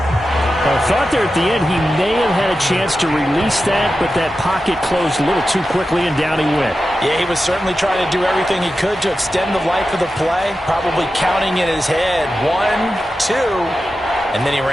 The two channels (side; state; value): both; normal; correlation 0.92